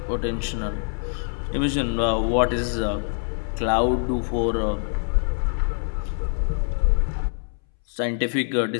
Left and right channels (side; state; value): right; silent; 62 dB below the other